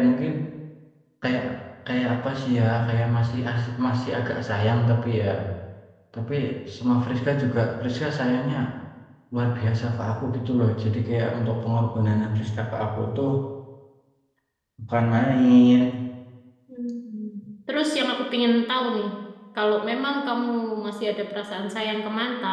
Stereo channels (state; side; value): identical; both; correlation 1.00